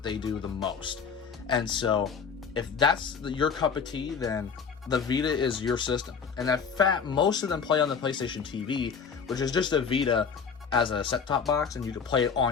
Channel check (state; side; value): quieter; right; 6.2 dB